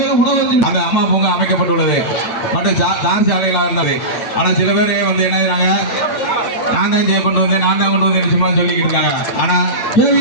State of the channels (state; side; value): late; right; 8.8 ms